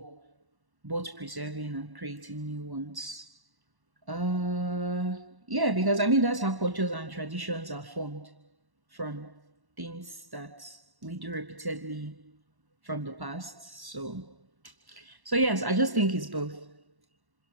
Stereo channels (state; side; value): late; left; 1.1 ms